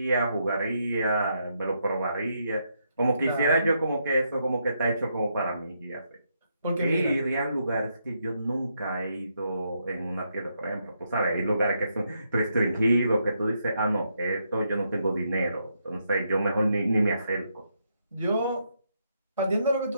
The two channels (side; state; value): both; inverted; correlation -0.79